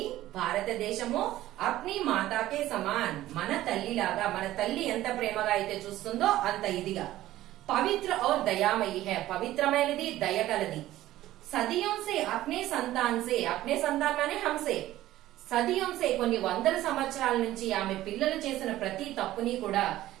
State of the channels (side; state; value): left; quieter; 14.9 dB